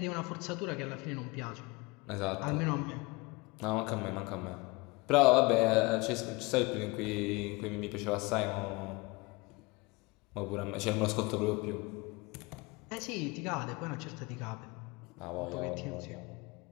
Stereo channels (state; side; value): quieter; right; 25.2 dB